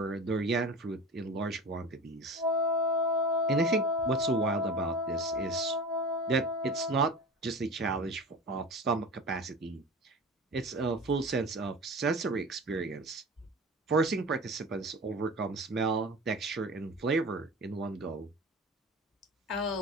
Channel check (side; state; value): both; normal; correlation 0.34